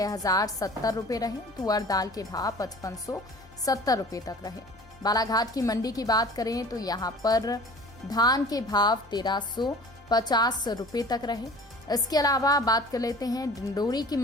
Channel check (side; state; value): both; normal; correlation 0.44